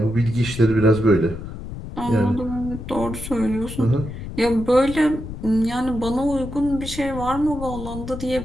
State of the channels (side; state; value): left; noise; rumble, 9 dB below the sound